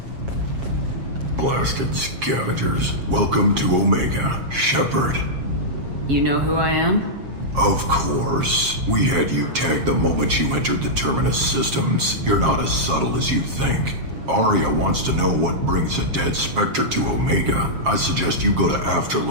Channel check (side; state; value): left; late; 7.4 ms